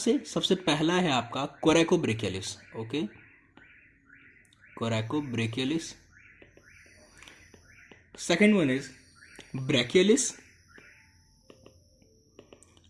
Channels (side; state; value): both; identical; correlation 1.00